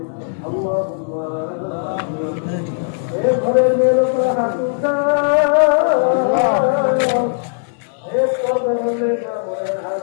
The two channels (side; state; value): right; silent; digital silence